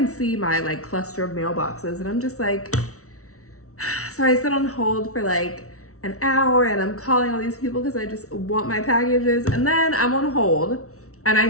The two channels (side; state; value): right; late; 0.64 ms